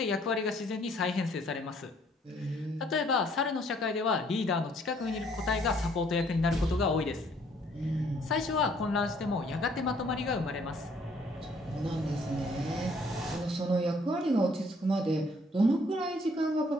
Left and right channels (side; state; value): both; normal; correlation 0.63